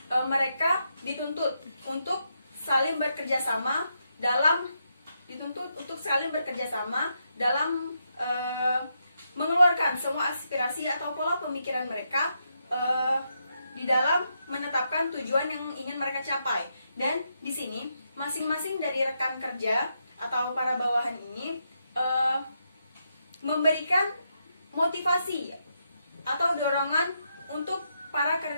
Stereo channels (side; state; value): both; inverted; correlation -0.81